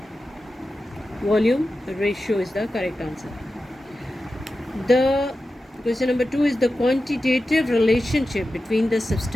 volume ratio is the correct answer. The question number 2 is the quantitative relationship between the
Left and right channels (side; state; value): both; normal; correlation 0.92